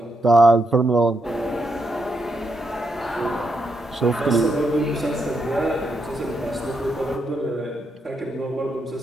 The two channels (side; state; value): both; normal; correlation 0.81